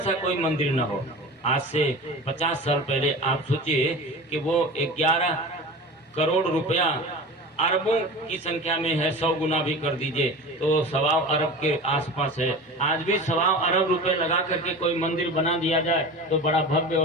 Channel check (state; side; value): normal; both; correlation 0.33